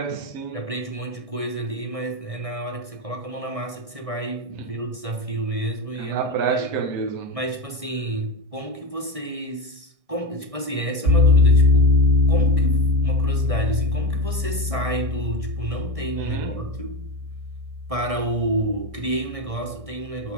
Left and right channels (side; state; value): left; late; 1.6 ms